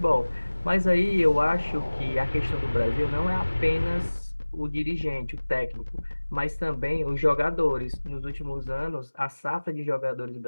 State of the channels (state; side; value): inverted; both; correlation -1.00